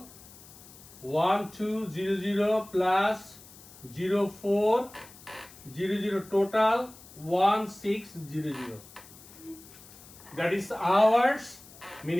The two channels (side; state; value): left; noise; hiss, 20 dB below the sound